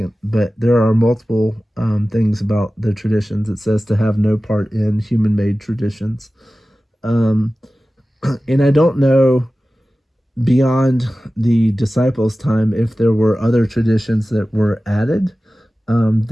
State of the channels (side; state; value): both; normal; correlation 0.96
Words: But there are multiple things about the traditions. It says to have no part in human-made traditions. Um, and I don't know beyond the disciples' time if there were other traditions that were added